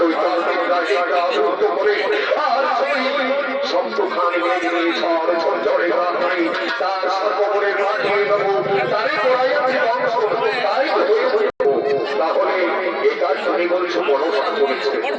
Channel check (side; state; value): both; identical; correlation 1.00